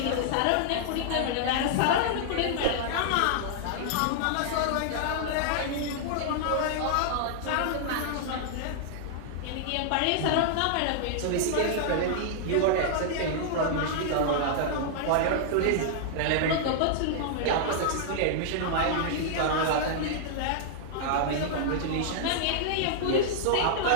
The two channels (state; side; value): different; both; correlation -0.01